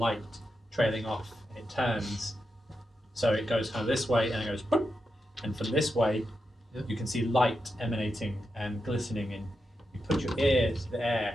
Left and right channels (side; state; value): both; normal; correlation 0.87